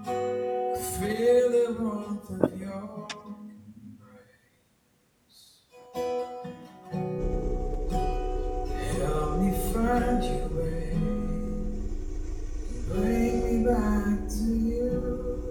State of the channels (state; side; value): identical; both; correlation 1.00